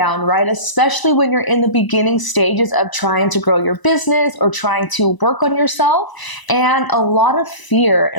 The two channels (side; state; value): right; late; 1.0 ms